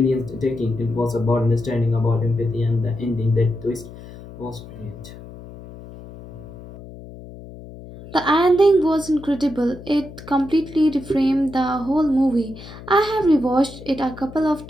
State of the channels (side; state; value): left; noise; hum, 16 dB below the sound